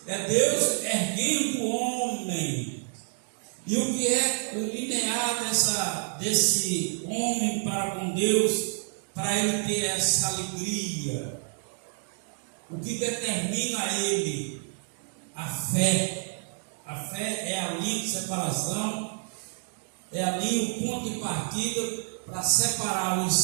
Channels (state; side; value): silent; left; 59 dB below the other